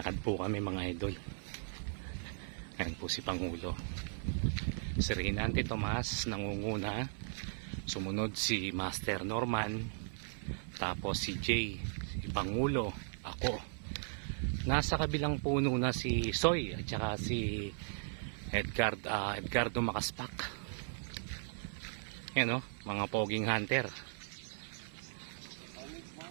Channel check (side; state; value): left; silent; 53 dB below the other